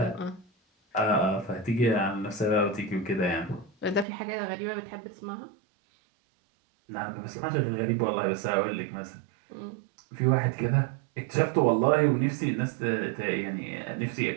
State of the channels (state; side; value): drops out; left; at 4.0 s